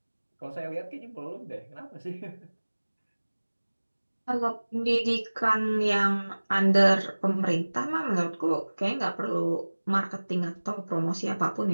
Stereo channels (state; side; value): inverted; both; correlation -1.00